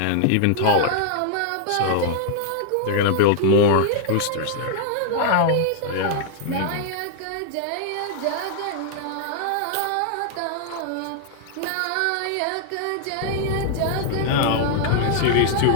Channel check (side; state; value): both; different; correlation -0.01